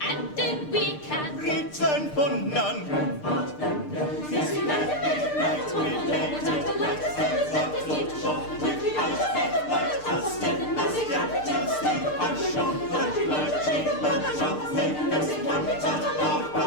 and then we can return for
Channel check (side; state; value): right; late; 6.7 ms